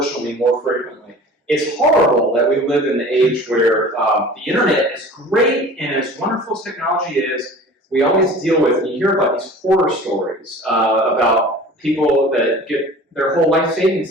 more frequently. It's horrible that we live in the age where the internet is great, and as wonderful as technology is, we always deal with, and you hear about these horror stories about people that get their whole life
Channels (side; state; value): both; normal; correlation 0.42